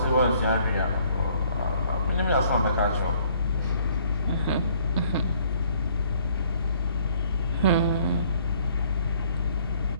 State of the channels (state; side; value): inverted; both; correlation -0.62